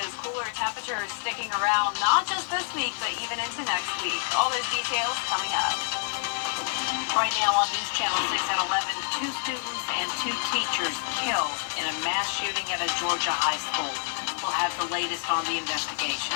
cooler temperatures sticking around not just this week, but even into next week. All those details coming up. Right now on News Channel 6 at 11, 2 students and 2 teachers killed in a mass shooting at a Georgia high school. We'll have the latest on the investigation.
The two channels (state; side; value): silent; right; 60 dB below the other